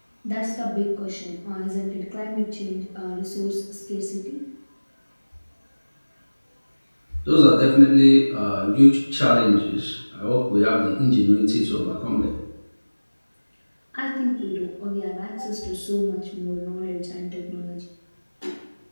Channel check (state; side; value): inverted; both; correlation -1.00